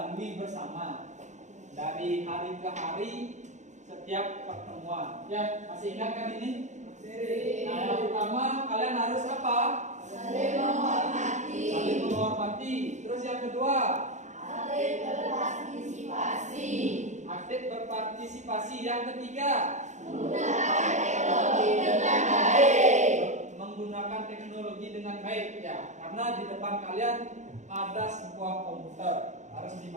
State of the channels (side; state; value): left; late; 0.34 ms